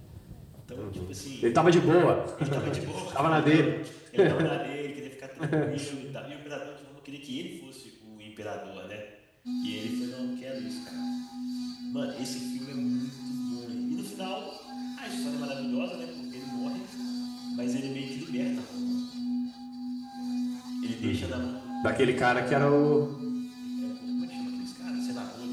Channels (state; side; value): identical; both; correlation 1.00